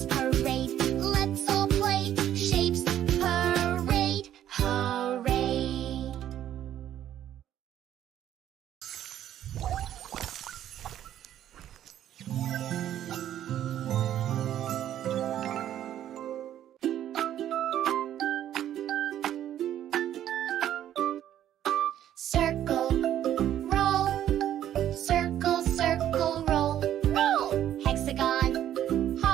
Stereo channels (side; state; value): left; quieter; 11.3 dB